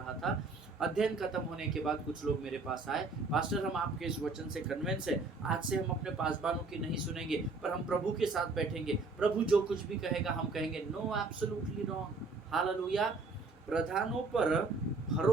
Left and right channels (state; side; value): quieter; left; 3.7 dB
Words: था। अध्ययन खत्म होने के बाद कुछ लोग मेरे पास आए, पास्टर हम आपके इस वचन से कन्विंस है, आज से हम अपने पासबानों की नहीं सुनेंगे पर हम प्रभु के साथ बैठेंगे, प्रभु जो कुछ भी कहेगा हम कहेंगे। No, absolutely wrong. हालेलुया। प्रधानों पर